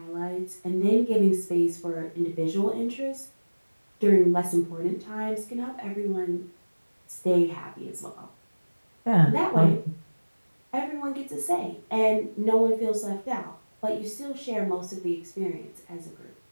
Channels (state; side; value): inverted; both; correlation -1.00